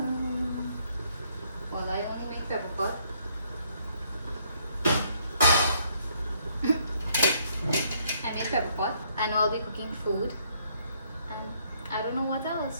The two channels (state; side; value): inverted; both; correlation -0.68